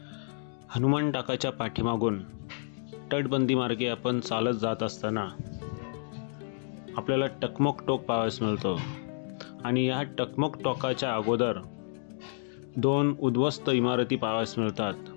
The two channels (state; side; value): silent; right; digital silence